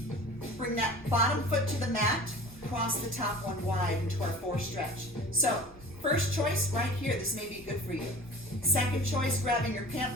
bring that bottom foot to the mat, cross the top one wide into our four stretch. So first choice right here, this may be good for you. Second choice, grabbing your pant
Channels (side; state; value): both; normal; correlation 0.41